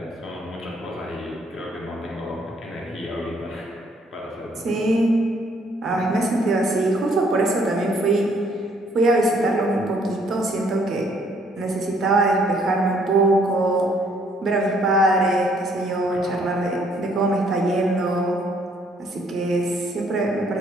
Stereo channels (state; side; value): normal; both; correlation 0.65